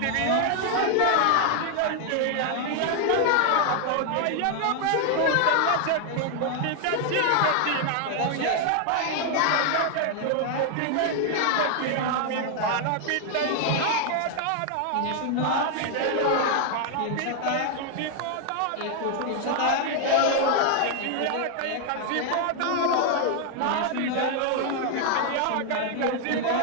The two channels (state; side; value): different; both; correlation 0.00